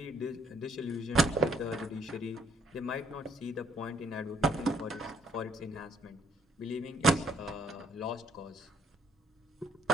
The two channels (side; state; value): both; normal; correlation 0.67